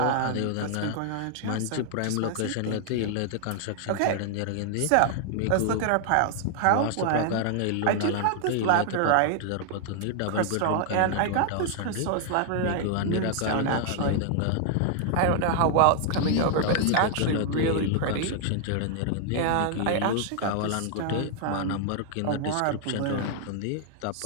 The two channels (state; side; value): different; both; correlation 0.00